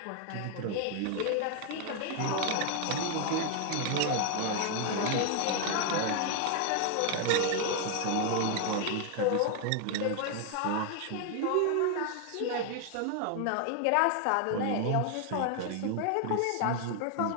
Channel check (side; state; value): both; different; correlation 0.00